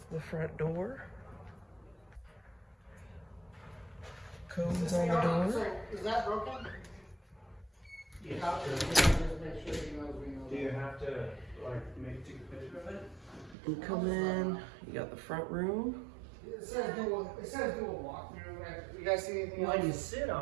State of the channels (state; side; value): drops out; left; at 13.6 s